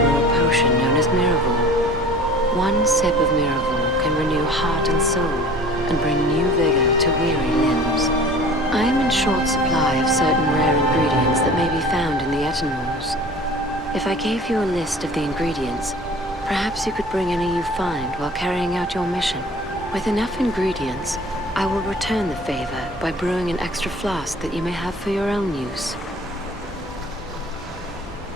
brew a potion known as Miraval. One sip of Miraval can renew heart and soul, and bring new vigor to weary limbs. I am in short supply of certain rare ingredients that may be found in the Etenmoors. If I gave you a list of the ingredients, perhaps you could bring any you find while carrying out your mission. With enough ingredients, I will return the favor by brewing an extra flask that you may have for your own use.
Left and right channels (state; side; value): normal; both; correlation 0.45